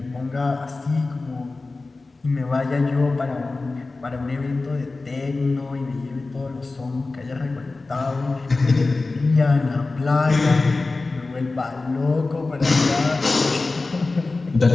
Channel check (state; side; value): quieter; right; 3.5 dB